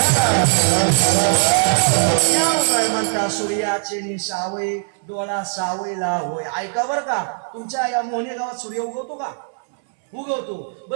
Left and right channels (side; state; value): left; silent; 66 dB below the other